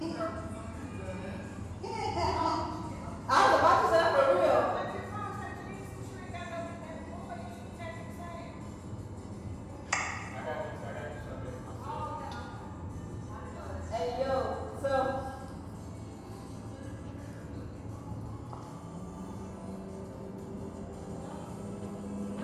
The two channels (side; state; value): both; identical; correlation 1.00